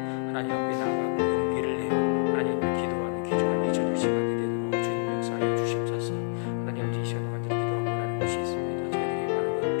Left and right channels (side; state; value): right; silent; 60 dB below the other